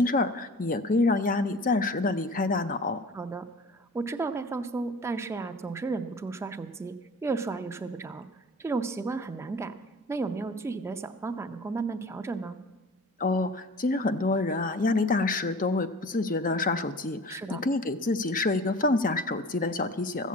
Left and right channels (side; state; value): both; normal; correlation 0.42